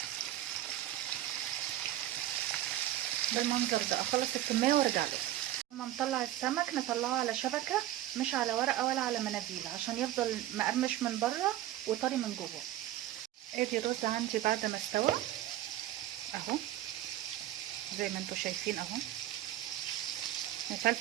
بالمنظر ده اخلص الكميه وارجع لكم. لما نطلع السمك نطلعه على شبكه مش على ورقه ولا على مناديل عشان يفضل مقرمش من بره وطري من جوه. ادي الرز عندي بعد ما استوى اهو زي ما انتوا شايفين اهو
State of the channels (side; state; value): left; quieter; 13.6 dB